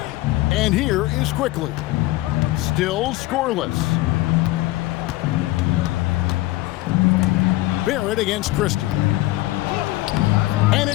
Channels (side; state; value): right; quieter; 18.2 dB